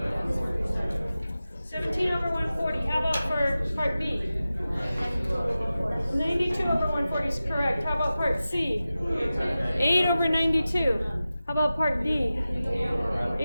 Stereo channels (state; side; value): inverted; both; correlation -0.95